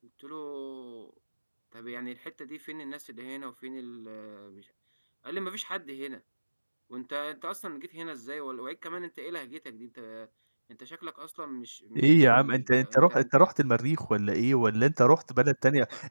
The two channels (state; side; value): inverted; both; correlation -1.00